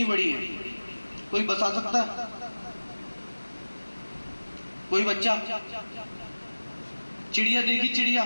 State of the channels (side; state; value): both; inverted; correlation -1.00